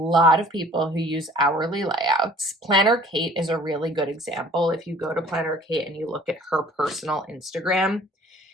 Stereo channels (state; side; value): normal; both; correlation 0.52